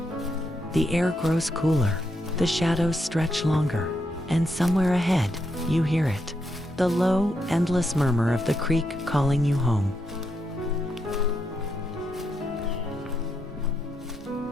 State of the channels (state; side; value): normal; both; correlation 0.81